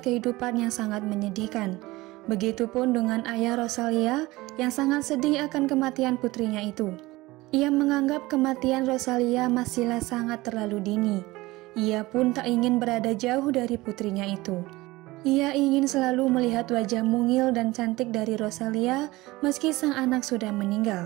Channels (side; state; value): left; quieter; 19.9 dB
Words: kehidupan yang sangat menyedihkan. Begitupun dengan ayah Rosalia yang sangat sedih akan kematian putrinya itu. Ia menganggap kematian Rosalia masihlah sangat terlalu dini. Ia pun tak ingin berada jauh dari putrinya itu. Ia ingin selalu melihat wajah mungil dan cantik dari Rosalia meski sang anak sudah